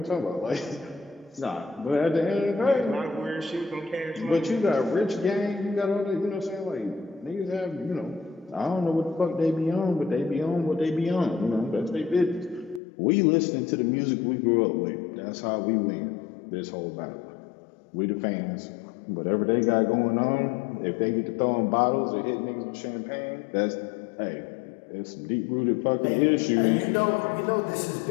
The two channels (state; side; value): drops out; right; at 12.8 s